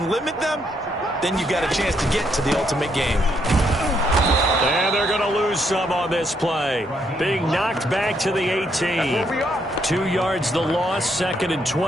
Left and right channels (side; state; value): both; normal; correlation 0.74